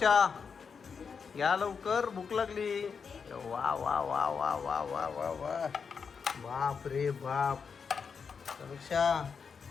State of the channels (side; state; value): right; quieter; 5.9 dB